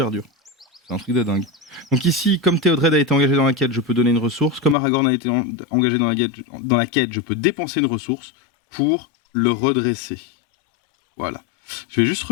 dur. C'est un truc de dingue. Donc ici, comme Théodred a été engagé dans la quête, je peux donner une ressource. Comme Aragorn a été engagé dans la quête, je peux dépenser une ressource pour le redresser. Voilà. Je vais juste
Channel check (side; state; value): right; drops out; at 4.8 s